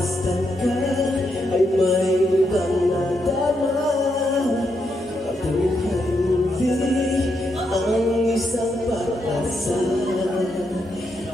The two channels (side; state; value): both; normal; correlation 0.81